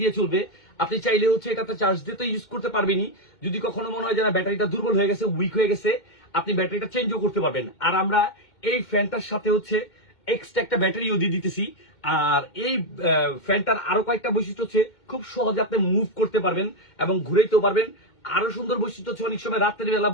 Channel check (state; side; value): late; right; 2.2 ms